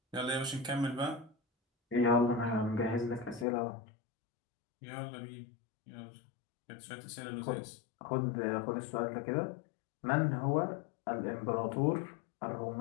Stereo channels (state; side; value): drops out; right; at 3.5 s